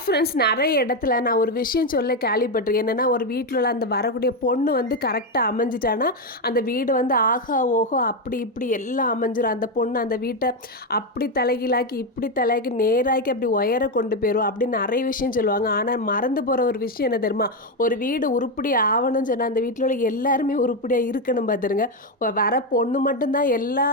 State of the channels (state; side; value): normal; both; correlation 0.08